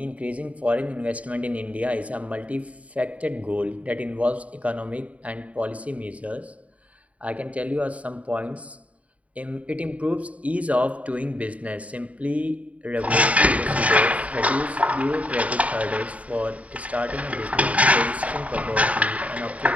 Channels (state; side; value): late; left; 0.067 ms